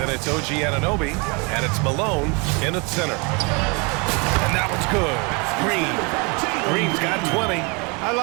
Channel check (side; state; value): left; quieter; 30.7 dB